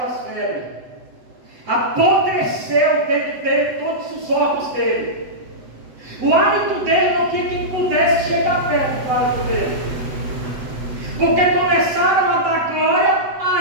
febres. Apodreceu dentro dele todos os órgãos dele. O hálito dele não tinha quem pudesse chegar perto do hálito dele, porque começaram a dar glória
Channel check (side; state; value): left; late; 7.9 ms